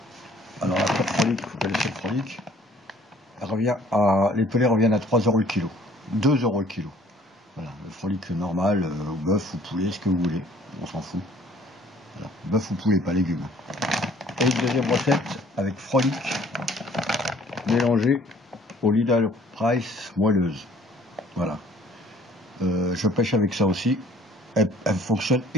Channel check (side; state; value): both; normal; correlation 0.57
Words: Alors la pure frolic, vous connaissez le frolic, les pelés reviennent à 3 € le kilo, 2 € le kilo. Voilà, le frolic normal, bœuf ou poulet, ce que vous voulez, on s'en fout. Voilà, bœuf ou poulet, pas légumes. Et une deuxième recette avec frolic mélangé au Leader Price moelleuse. Voilà. Je pêche avec ça aussi. Elle fonctionne